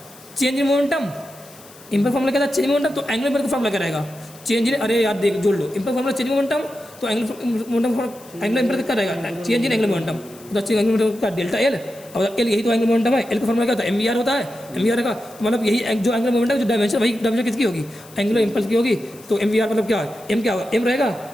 change in momentum, impulse formula क्या था चेंज इन मोमेंटम, तो एंगुलर इम्पल्स का फार्मूला क्या रहेगा चेंज इन, अरे यार देख जोड़ लो, impulse formula change in momentum, तो एंगुलर इम्पल्स क्या रहेगा चेंज इन एंगुलर मोमेंटम, तो चेंज एंगुलर मोमेंटम का डेल्टा एल, अब एल यही तो एंगुलर मोमेंटम है, एल का फार्मूला क्या होता है एम वी आर होता है, एम वी आर का तो मतलब यही जो एंगुलर मोमेंटम जो डायमेंशन वही डायमेंशन किसकी होगी एंगुलर इम्पल्स की होगी, तो एम वी आर मतलब क्या है एम क्या होगा एम रहेगा,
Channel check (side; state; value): left; noise; hiss, 22 dB below the sound